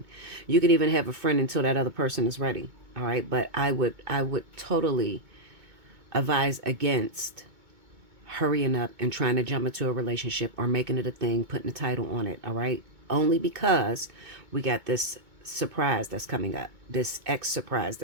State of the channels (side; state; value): left; late; 2.2 ms